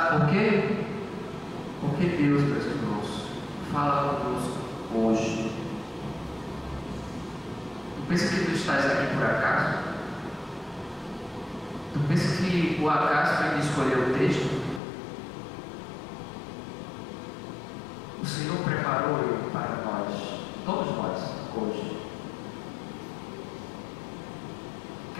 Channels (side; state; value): right; drops out; at 14.8 s